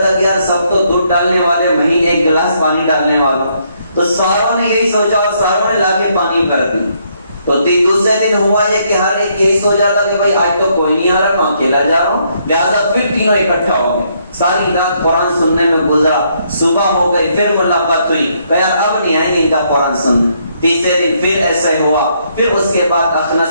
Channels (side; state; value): both; inverted; correlation -0.72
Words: تھا کہ یار سب تو دودھ ڈالنے والے، میں ہی ایک گلاس پانی ڈالنے والا۔ تو ساروں نے یہی سوچا اور ساروں نے لا کے پانی بھر دی۔ تو دوسرے دن ہوا یہ کہ ہر ایک یہی سوچا تھا کہ بھائی آج تو کوئی نہیں آ رہا، میں اکیلا جا رہا ہوں، لہٰذا پھر تینوں اکٹھا ہو گئے۔ ساری رات قرآن سننے میں گزرا، صبح ہو گئی، پھر ملاقات ہوئی، کہا اب نہیں آئیں گے ان کا قرآن سننے۔ تیسرے دن پھر ایسا ہوا، پھر اس کے بعد